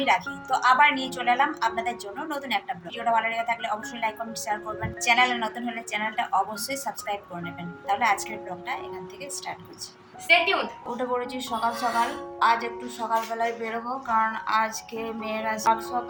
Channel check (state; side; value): identical; both; correlation 1.00